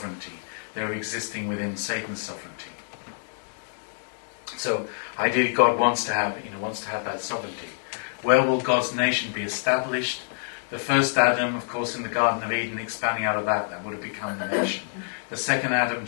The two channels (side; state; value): right; silent; digital silence